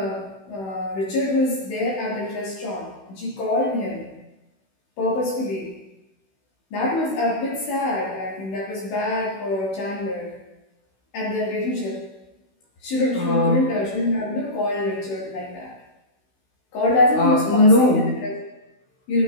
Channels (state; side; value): late; right; 16 ms